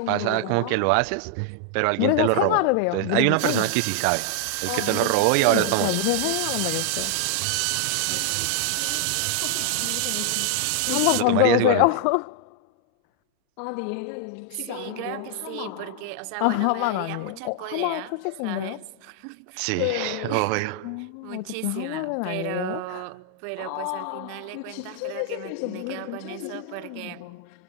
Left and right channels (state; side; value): different; both; correlation 0.00